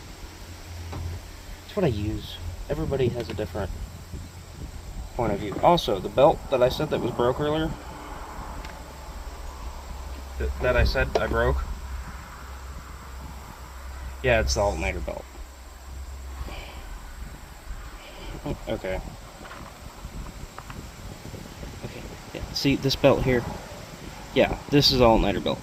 It's what I use. Everybody has a different point of view. Also, the belt that I said that was broke earlier, that I said I broke, yeah, it's the alternator belt. Okay. Okay, yeah, see this belt here? Yeah, this is alternator belt.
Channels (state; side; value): identical; both; correlation 1.00